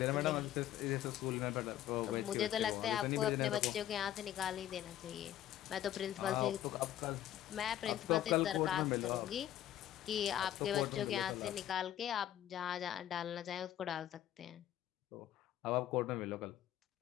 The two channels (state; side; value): quieter; right; 12.2 dB